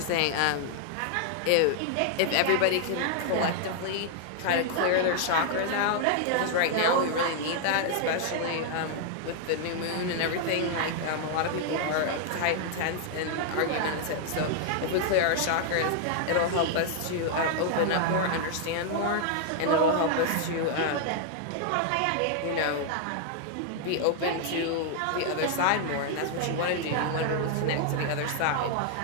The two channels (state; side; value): different; both; correlation 0.00